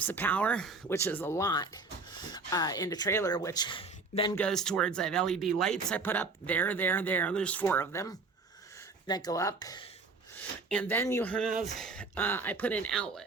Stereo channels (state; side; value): quieter; left; 4.0 dB